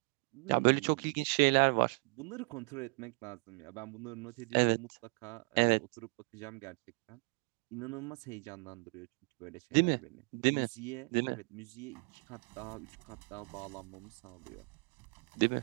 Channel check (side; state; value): left; quieter; 35.7 dB